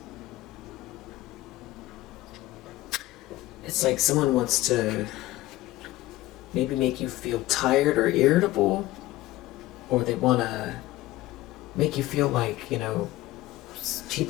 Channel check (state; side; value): quieter; right; 17.1 dB